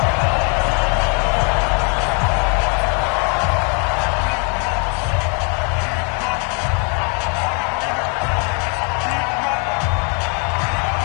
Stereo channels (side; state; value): right; quieter; 38.1 dB